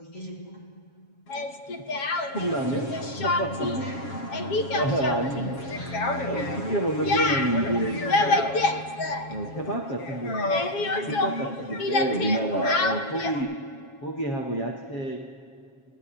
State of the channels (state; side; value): late; right; 7.3 ms